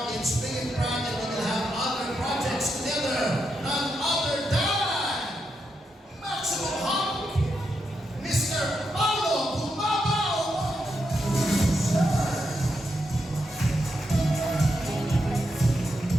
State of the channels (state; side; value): normal; both; correlation 0.83